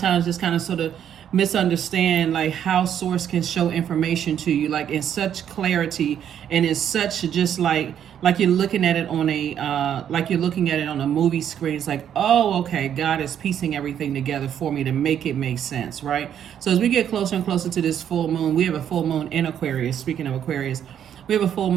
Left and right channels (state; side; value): quieter; left; 9.4 dB